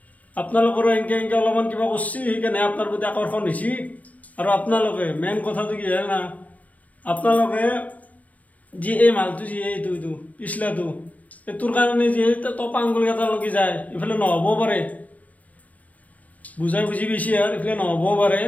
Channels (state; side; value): late; right; 0.070 ms